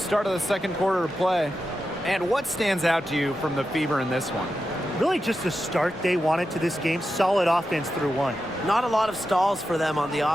of the second quarter of play. And what stands out to you from the Fever in this one? Really just the start they wanted to this game. Solid offense through 1. Not a lot of stalls for them on the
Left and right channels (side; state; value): both; normal; correlation 0.90